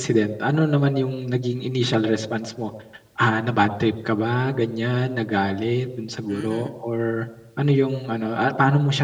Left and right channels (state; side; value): identical; both; correlation 1.00